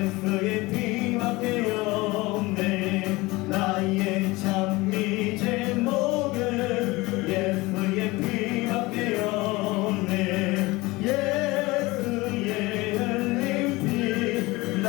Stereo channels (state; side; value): quieter; right; 21.7 dB